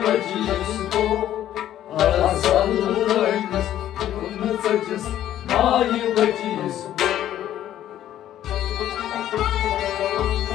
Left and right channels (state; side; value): quieter; right; 12.0 dB